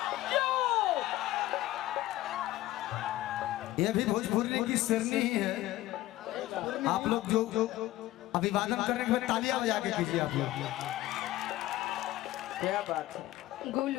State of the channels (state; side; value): quieter; right; 16.0 dB